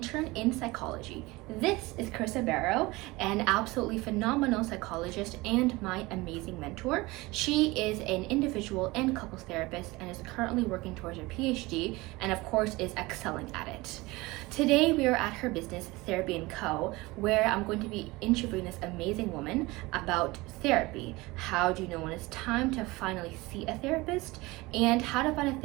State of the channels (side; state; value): left; quieter; 21.8 dB